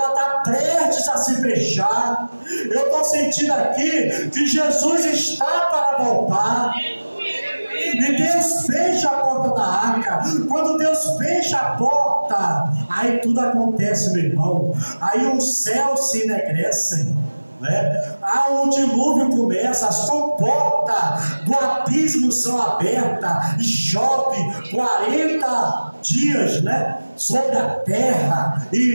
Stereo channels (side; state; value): both; inverted; correlation -1.00